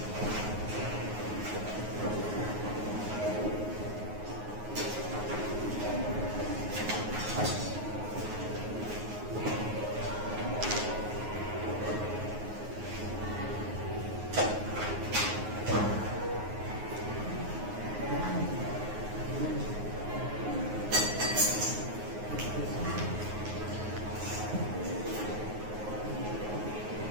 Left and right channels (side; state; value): left; late; 9.5 ms